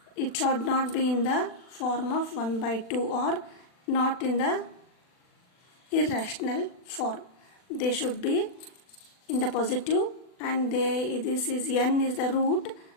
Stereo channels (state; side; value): late; right; 40 ms